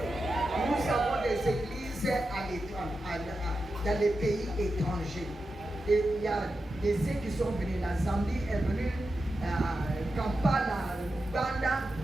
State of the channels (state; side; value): normal; both; correlation 0.90